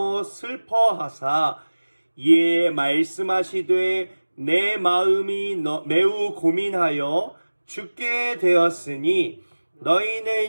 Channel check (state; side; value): inverted; both; correlation -1.00